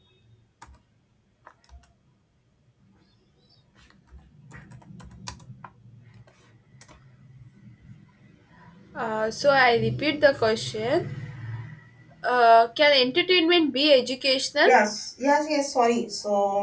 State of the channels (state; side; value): identical; both; correlation 1.00